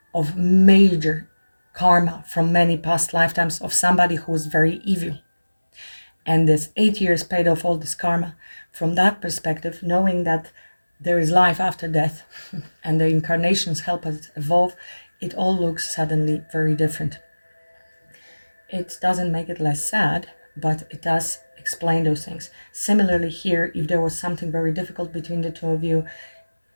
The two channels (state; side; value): inverted; both; correlation -1.00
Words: of major karma from many past lifetimes of somebody who was very evil. And this 8 years paid off all this karma. From that perspective, knowing that there is life after death and the incarnations help us evolve, it all looks suddenly very different. It doesn't make it less sad, but it does explain those things. Similarly here, if there was something very difficult between the two of you,